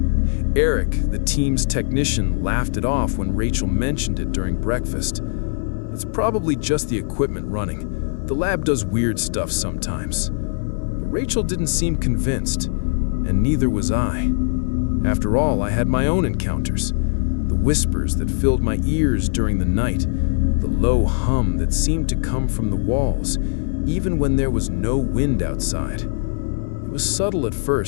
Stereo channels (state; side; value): silent; right; 61 dB below the other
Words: Eric, the team's technician, laughed it off when Rachel mentioned it during breakfast. It's probably just the equipment running. The lab does weird stuff sometimes. But Rachel didn't seem convinced, and neither was I. After all, I had my own encounters. The whispers that filled my ears during the night, the low hum that seemed to come from the walls, even when there was no wind outside. It was subtle at